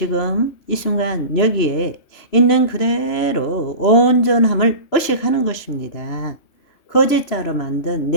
이 순간 여기에 있는 그대로 온전함을 의식하는 것입니다. 거짓자로 만든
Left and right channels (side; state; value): right; late; 3.0 ms